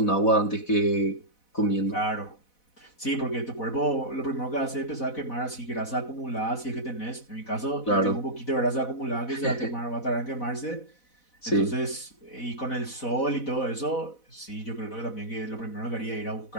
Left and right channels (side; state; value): right; late; 4.1 ms